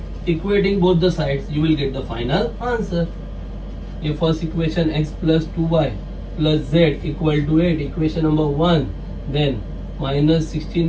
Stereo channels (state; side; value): identical; both; correlation 1.00